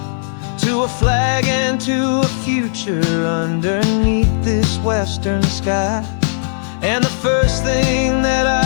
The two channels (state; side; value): silent; right; digital silence